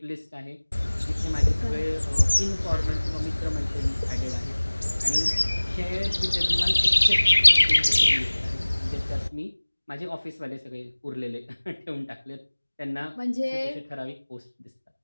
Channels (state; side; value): inverted; both; correlation -1.00